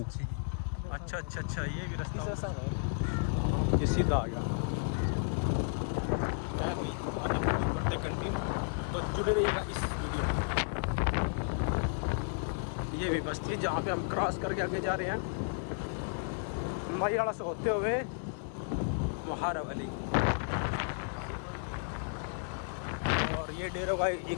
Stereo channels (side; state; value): right; silent; 56 dB below the other